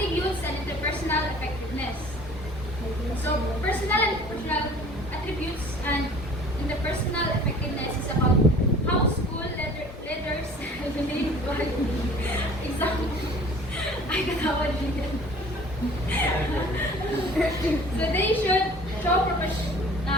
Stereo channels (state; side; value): normal; both; correlation 0.48